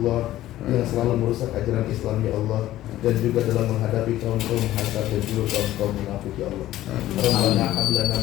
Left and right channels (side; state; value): right; quieter; 14.4 dB